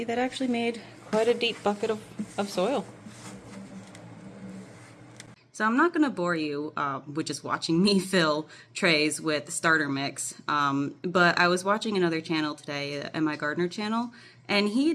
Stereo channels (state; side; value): identical; both; correlation 1.00